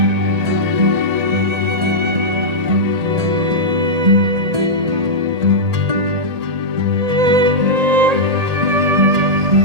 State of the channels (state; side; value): late; left; 1.8 ms